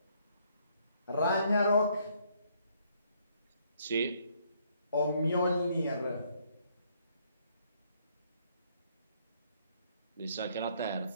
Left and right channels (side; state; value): both; inverted; correlation -0.67